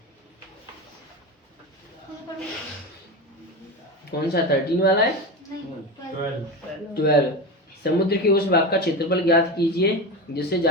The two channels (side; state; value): both; normal; correlation 0.22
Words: कौन सा 13 वाला है, 12। समुद्र के उस भाग का क्षेत्रफल ज्ञात कीजिए जिससे